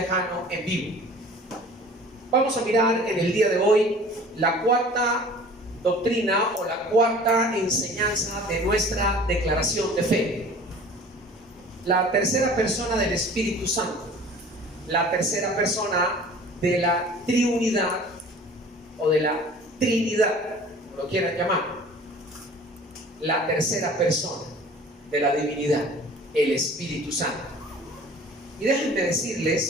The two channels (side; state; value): both; normal; correlation 0.46